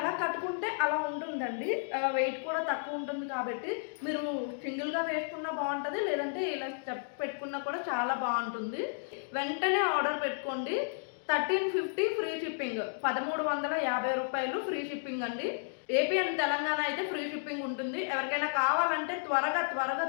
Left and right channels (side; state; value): right; silent; digital silence